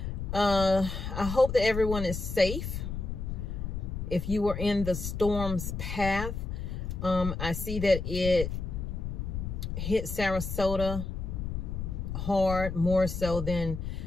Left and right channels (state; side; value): noise; left; rumble, 4 dB below the sound